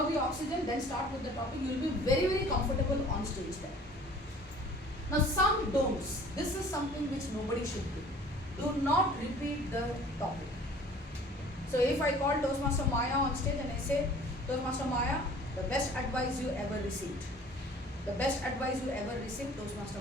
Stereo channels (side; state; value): both; normal; correlation 0.49